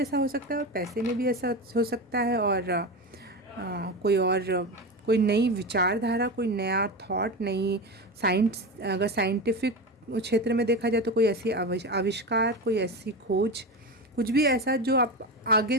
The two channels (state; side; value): normal; both; correlation 0.21